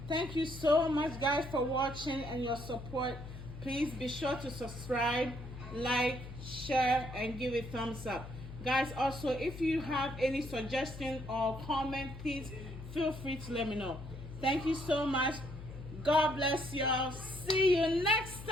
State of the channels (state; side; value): noise; left; hum, 12 dB below the sound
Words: Thank you so much guys for watching and your support. Please be sure to subscribe, like, share, and give it thumbs up. Guys, also if you have any suggestion or comment, please feel free to let me know. Thank you so much. God bless y'all. See you next